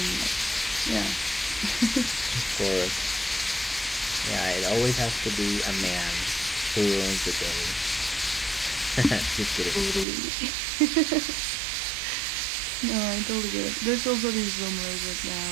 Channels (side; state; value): left; drops out; at 10.1 s